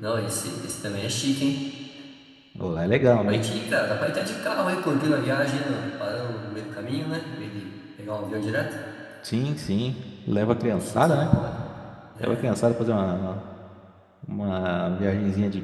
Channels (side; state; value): both; identical; correlation 1.00